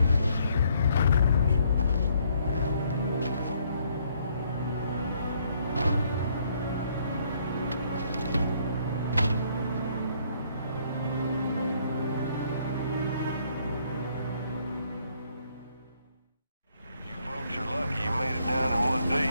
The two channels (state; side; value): inverted; both; correlation -0.68